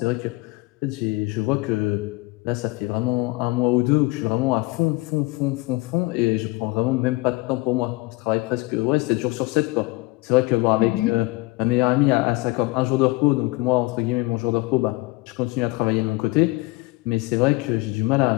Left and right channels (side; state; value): right; quieter; 22.8 dB